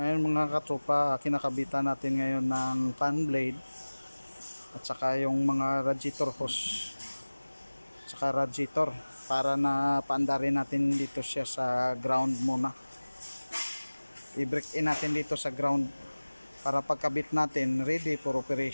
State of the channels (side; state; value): both; inverted; correlation -1.00